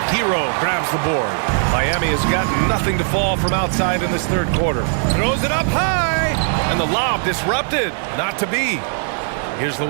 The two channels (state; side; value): silent; left; digital silence